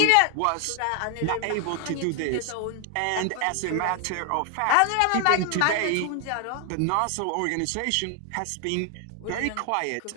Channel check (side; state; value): both; different; correlation 0.00